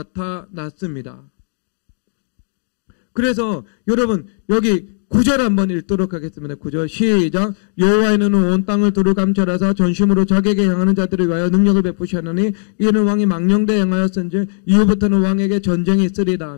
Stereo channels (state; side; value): silent; right; digital silence